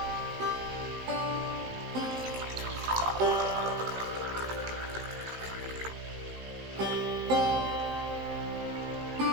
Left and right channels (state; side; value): late; left; 18 ms